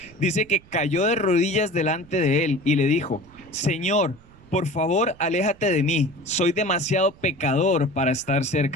dice que cayó de rodillas delante de él y le dijo: Señor, por favor, aléjate de mí, soy demasiado pecador para estar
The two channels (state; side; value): noise; right; rumble, 25 dB below the sound